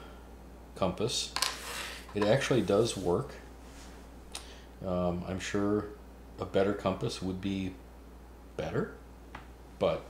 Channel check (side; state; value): both; identical; correlation 1.00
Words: compass. It actually does work. I'm sure a better compass would be better, but